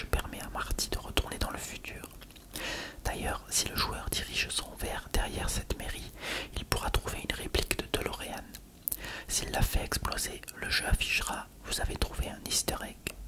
permet à Marty de retourner dans le futur. D'ailleurs, si le joueur dirige son verre derrière cette mairie, il pourra trouver une réplique de DeLorean. S'il la fait exploser, le jeu affichera « Vous avez trouvé un easter egg ».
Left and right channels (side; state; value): both; identical; correlation 1.00